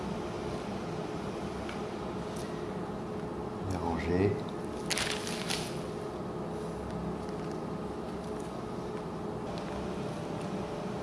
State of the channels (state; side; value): identical; both; correlation 1.00